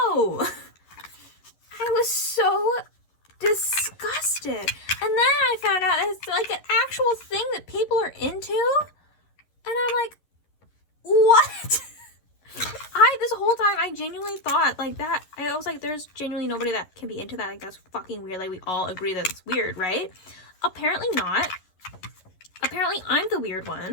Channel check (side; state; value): right; late; 11 ms